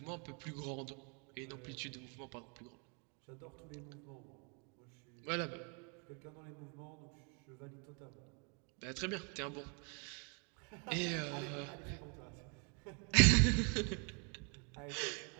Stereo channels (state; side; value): quieter; left; 36.1 dB